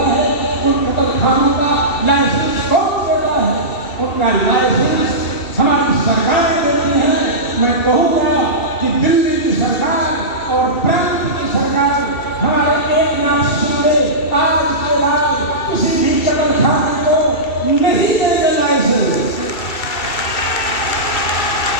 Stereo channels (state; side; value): late; right; 2.7 ms